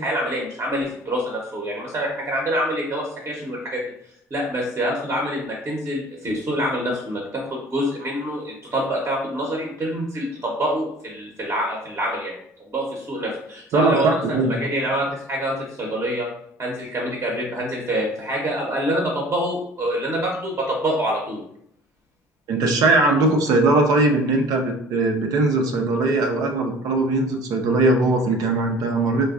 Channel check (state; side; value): normal; both; correlation 0.45